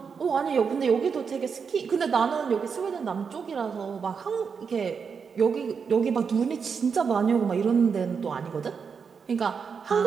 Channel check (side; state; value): left; quieter; 6.0 dB